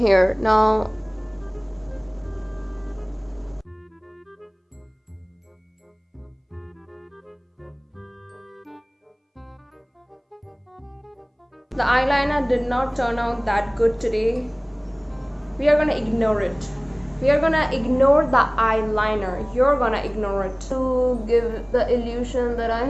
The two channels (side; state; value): both; identical; correlation 1.00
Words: Now the eyeliner did not turn out that good today. We are gonna ignore it. We are gonna ignore the eyeliner. You're gonna ignore it to give the illusion that I